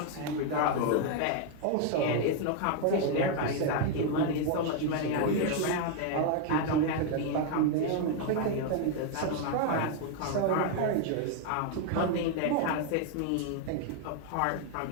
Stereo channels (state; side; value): different; both; correlation 0.00